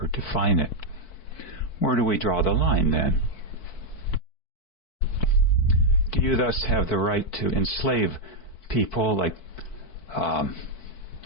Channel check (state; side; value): late; right; 4.6 ms